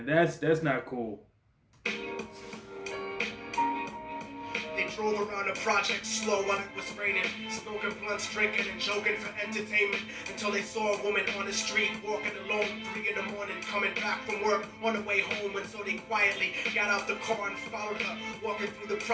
That's not cool. They drove around the project slow while it was raining, smoking blunts, drinking and joking for entertainment, until they saw a woman on the street walking alone 3 in the morning, coming back from work on the way home. And so they quietly got out the car and followed her, walking through the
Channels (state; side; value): identical; both; correlation 1.00